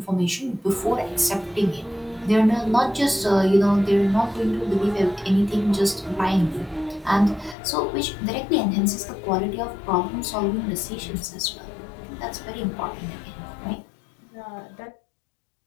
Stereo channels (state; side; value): drops out; right; at 7.6 s